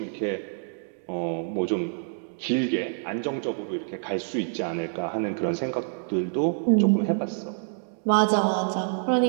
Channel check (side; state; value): left; silent; digital silence